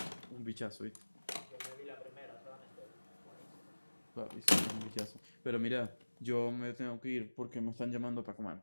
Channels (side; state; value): both; inverted; correlation -1.00